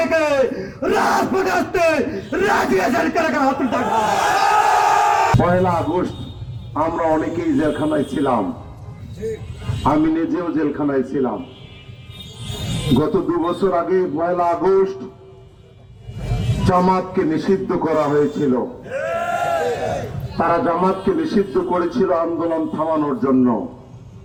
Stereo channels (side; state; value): both; identical; correlation 1.00